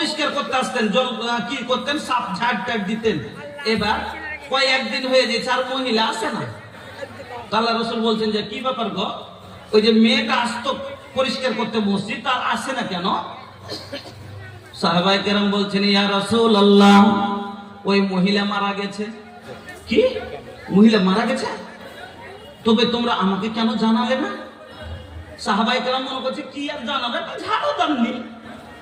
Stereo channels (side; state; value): both; identical; correlation 1.00